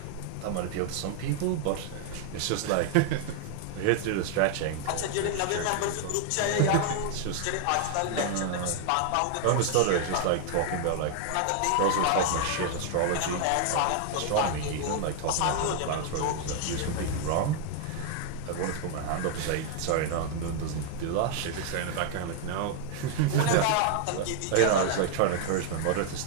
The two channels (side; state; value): both; different; correlation 0.00